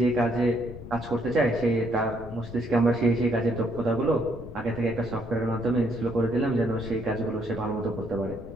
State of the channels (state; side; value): noise; left; rumble, 13 dB below the sound